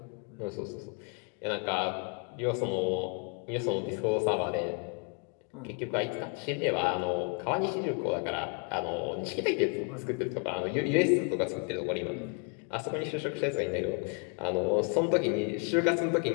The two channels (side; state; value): right; quieter; 38.1 dB